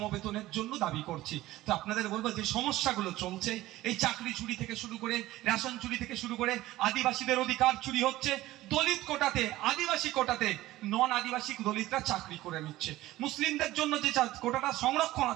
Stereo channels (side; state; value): left; quieter; 16.5 dB